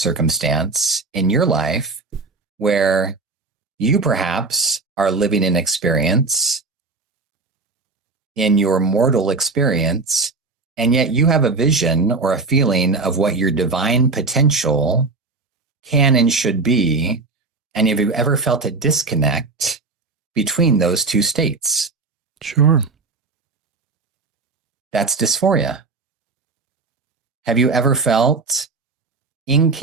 in your life where you perhaps are living an experience in your mortal experience, and yet you have a vision or a feeling of what your divine potential can and should be? And have you ever felt a disconnect between those two states? Sure. That's dysphoria. Have you ever felt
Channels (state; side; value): quieter; left; 4.0 dB